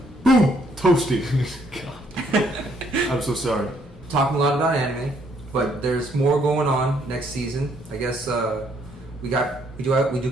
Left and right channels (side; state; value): both; normal; correlation 0.68